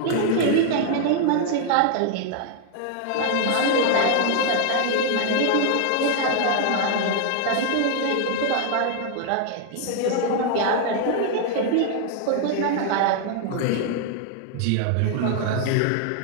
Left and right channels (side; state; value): both; different; correlation 0.00